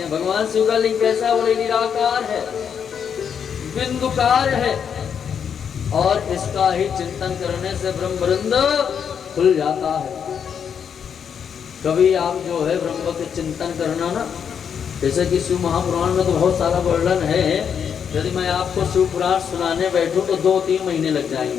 भगवान शिव का लिंग कैसा, बोले निराकार है, बिंदुकार है और इसका ही चिंतन करने से ब्रह्मवृंद खुल जाता है। कभी आप जो है ब्रह्म के चिंतन करना ना, जैसे कि शिव महापुराण में तो बहुत सारा वर्णन है, यदि मैं आपको शिव पुराण सुनाने बैठूं तो 2-3 महीने लग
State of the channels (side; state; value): right; quieter; 7.5 dB